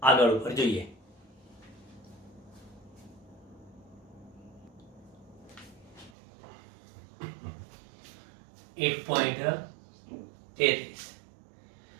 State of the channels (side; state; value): left; drops out; at 6.1 s